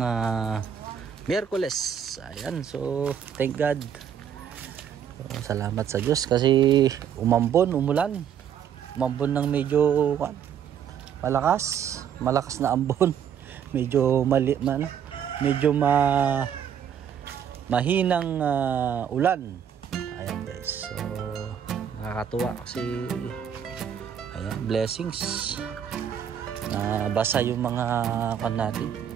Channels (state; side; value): quieter; left; 8.6 dB